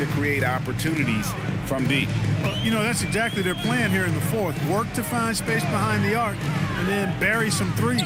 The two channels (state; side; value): identical; both; correlation 1.00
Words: create opportunities from deep. You know, that's exactly their plan here in the fourth. Work to find space behind the arc and then bury some